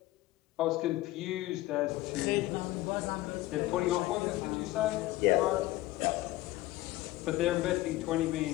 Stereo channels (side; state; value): right; quieter; 17.2 dB